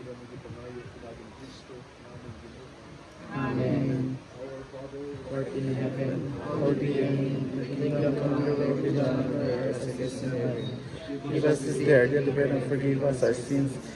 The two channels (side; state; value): both; identical; correlation 1.00